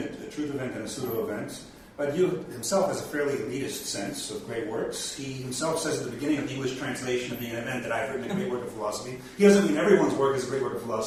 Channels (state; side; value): identical; both; correlation 1.00